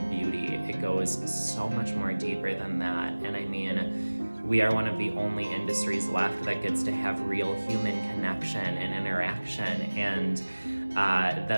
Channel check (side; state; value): both; inverted; correlation -1.00